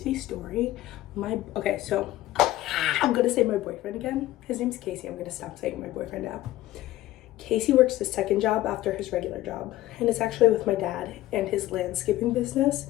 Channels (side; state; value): right; quieter; 15.6 dB